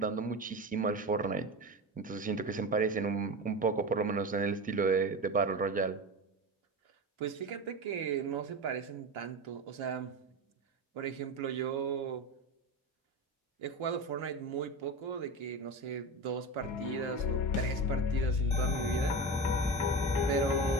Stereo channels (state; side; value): normal; both; correlation 0.25